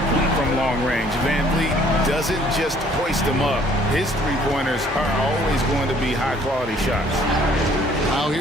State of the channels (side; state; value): both; normal; correlation 0.59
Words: from long range. VanVleet doesn't just hoist him up. His three-pointers are always going to be high-quality shots. Now